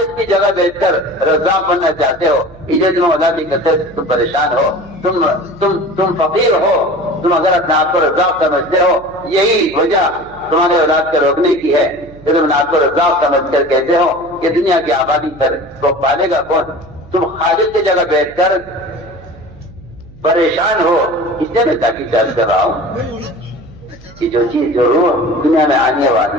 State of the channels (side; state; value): right; noise; hum, 22 dB below the sound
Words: کی جگہ بیٹھ کر رزاق بننا چاہتے ہو، اسے تم اولاد کی کثرت سے تم پریشان ہو، تم فقیر ہو، تم اگر اپنے آپ کو رزاق سمجھتے ہو، یہی وجہ تمہارے اولاد کو روکنے کی ہے کہ تم آپ کو رزاق سمجھ کر کہتے ہو کہ دنیا کی آبادی پر وہ پالے گا کون؟ تم خالص کی جگہ بیٹھ کر پریشان ہو، اس لیے میں تاکید درج کر رہا ہوں کہ جو چیز جو روح دنیا میں آنے والی